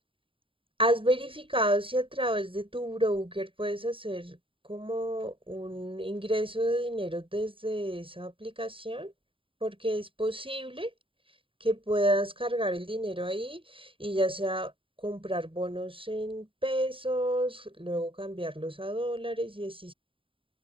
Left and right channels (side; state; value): left; late; 0.25 ms